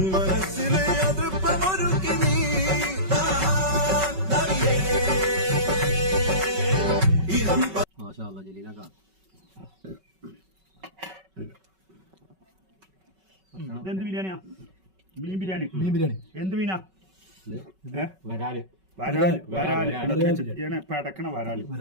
മനസ്സിലെ അതൃപ്പമൊരുക്കി നീ എന്ത് ബിരിയാണിയാ? മീൻ ബിരിയാണി. മീൻ ബിരിയാണി എന്ത് മീനാ? വരാല്. വരാല് വരാല് പെടക്കണ വരാല്.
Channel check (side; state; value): left; late; 5.3 ms